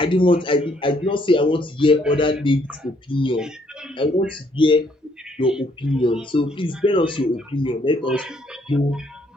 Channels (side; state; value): both; normal; correlation 0.68